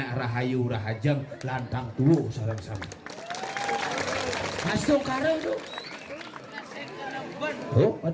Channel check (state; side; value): identical; both; correlation 1.00